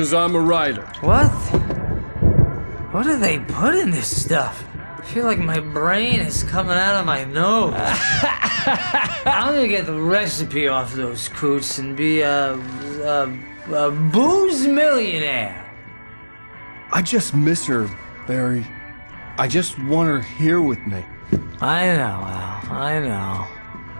I'm a writer. What? What do they put in this stuff? I feel like my brain is coming out of my nose. I'm gonna get the recipe off those coots and be a booze millionaire. I just miss her, Barry. I just want her here with me. I know, Al. I know.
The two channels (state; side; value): inverted; both; correlation -1.00